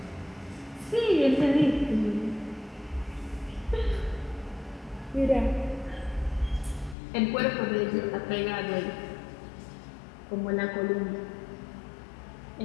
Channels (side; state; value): right; drops out; at 7.0 s